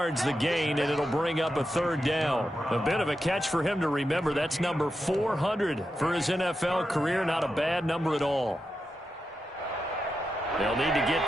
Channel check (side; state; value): both; normal; correlation 0.88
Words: the gain, and it'll bring up a third down. A bit of a catch for him to remember. That's number 400 for his NFL career. Not a bad number at all. They'll need to get